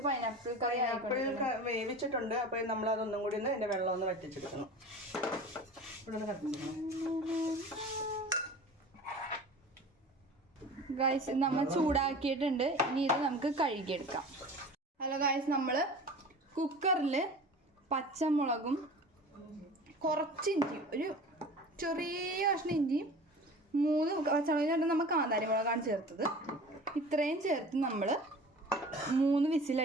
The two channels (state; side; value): normal; both; correlation 0.39